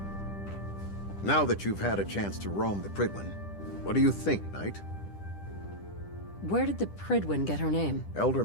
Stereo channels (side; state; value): right; late; 10 ms